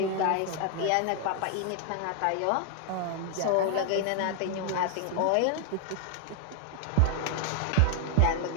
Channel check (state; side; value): different; both; correlation 0.00